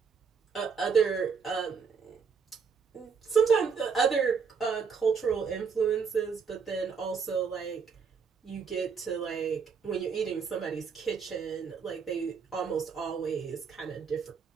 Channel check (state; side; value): quieter; left; 5.9 dB